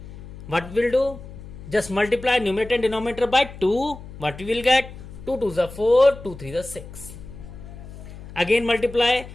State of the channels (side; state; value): left; noise; hum, 14 dB below the sound